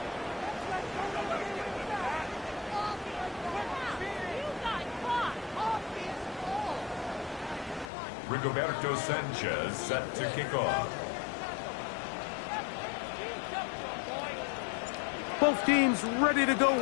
Rigoberto Sanchez set to kick off. Both teams ready to go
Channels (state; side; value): drops out; right; at 7.9 s